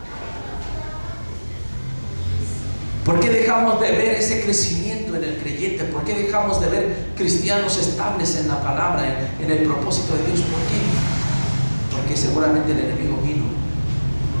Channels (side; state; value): both; inverted; correlation -1.00